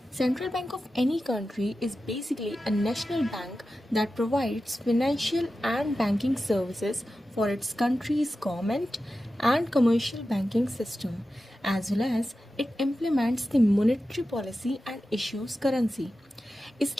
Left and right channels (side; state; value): both; normal; correlation 0.93